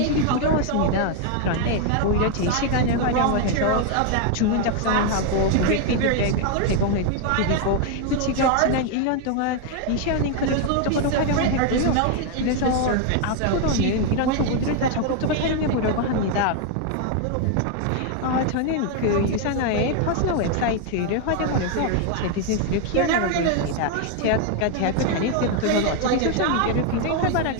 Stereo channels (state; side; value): different; both; correlation 0.01